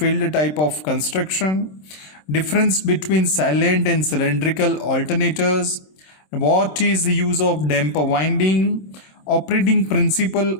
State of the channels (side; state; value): right; late; 26 ms